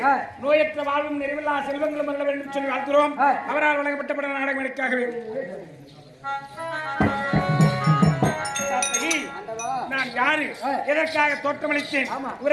நோயற்ற வாழ்வும் நிறைவில்லா செல்வங்களும் வர வேண்டும் சொல்லி வாழ்த்துகிறோம். அவரால் வழங்கப்பட்ட நாடகம் எனக்காகவே நான் யாரு எதற்காக தோற்றமளித்தேன்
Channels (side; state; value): both; identical; correlation 1.00